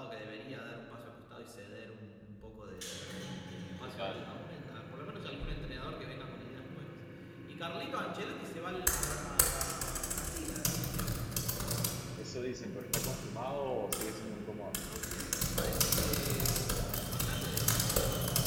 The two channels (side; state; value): both; identical; correlation 1.00